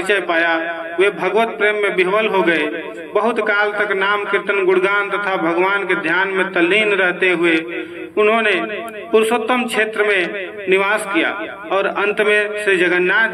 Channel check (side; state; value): both; identical; correlation 1.00